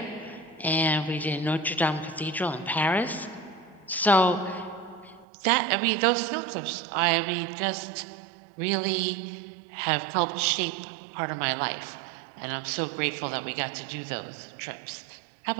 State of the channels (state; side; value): drops out; left; at 5.2 s